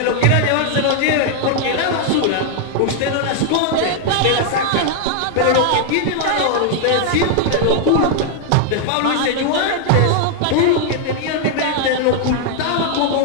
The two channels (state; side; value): different; both; correlation 0.00